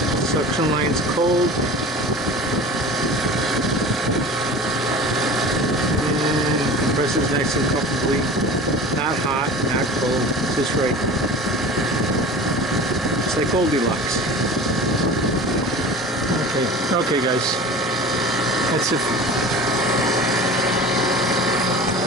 Suction line's cold. And compressor's nice and comfortably. Not hot, not cold, just right. It's like Goldilocks. Okay guys, that's it.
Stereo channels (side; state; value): both; normal; correlation 0.37